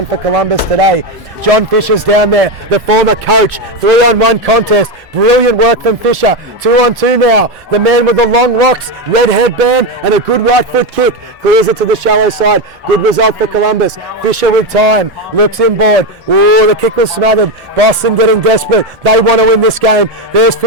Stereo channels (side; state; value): both; normal; correlation 0.11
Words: for Columbus today. John Fisher's down there, the former coach. 3-on-1 contest. Brilliant work from Fisher. 2-on-2 now. The man with the long locks, red headband, and a good right foot kick. Clears it to the shallow side. Good result for Columbus. Fisher with time. Looks inboard. Ooh, the kick was smothered. Boston getting desperate. They want to win this game. There's